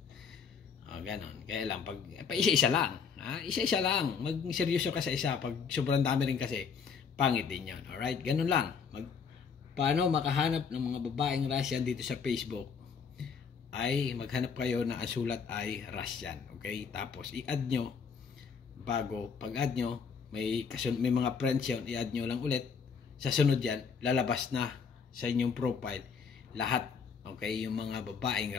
Gano'n. Kaya lang, isa-isa lang. Isa-isa lang. Mag-seryoso ka sa isa. Pag sobrang dami rin kasi, pangit din yun. Alright? Gano'n lang. Paano makahanap ng mga babaeng Russian dito sa Facebook? Ay maghanap kayo na ang sulat ay Russian. Okay? Tapos, i-add nyo. Pag-add nyo, may mga friends yun, i-add nyo lang ulit. Sa sunod yan, lalabas na sa inyong profile lahat, okay, yung mga babaeng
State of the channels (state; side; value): quieter; right; 6.1 dB